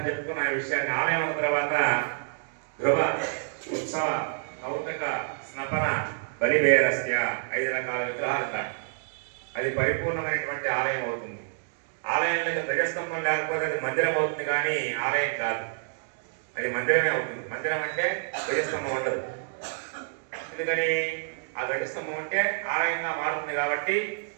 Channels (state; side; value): silent; left; digital silence